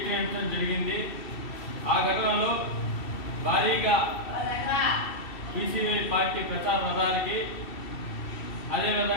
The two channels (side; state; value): right; late; 2.7 ms